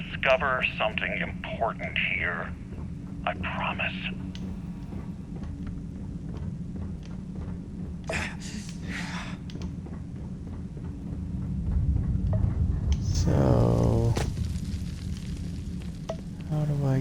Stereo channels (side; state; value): both; identical; correlation 1.00